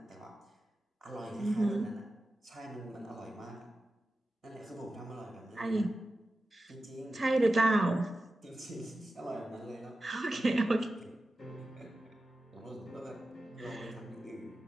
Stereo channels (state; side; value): normal; both; correlation 0.93